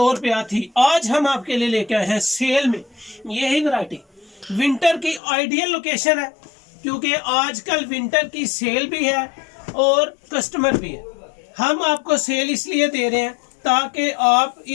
रुपया थी। आज हम आपके लिए लेके आए हैं सेल में यही वैरायटी। विंटर की आइडियल लोकेशन है क्योंकि आजकल विंटर की सेल भी है और कस्टमर भी है। हम आपको सेल इसलिए दे रहे हैं ताकि आप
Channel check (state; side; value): drops out; right; at 5.2 s